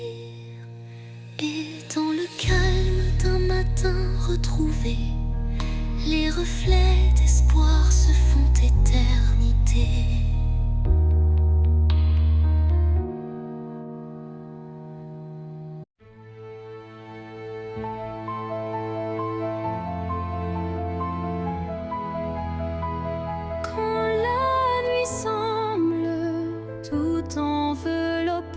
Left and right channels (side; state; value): both; identical; correlation 1.00